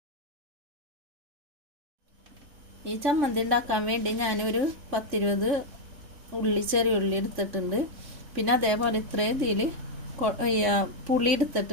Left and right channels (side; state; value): left; late; 3.5 ms